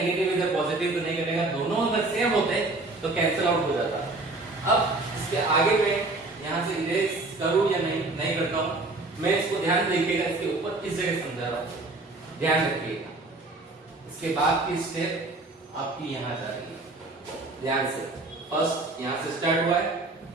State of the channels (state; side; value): quieter; left; 3.1 dB